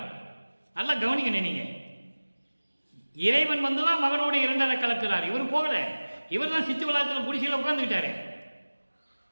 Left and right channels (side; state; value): both; inverted; correlation -1.00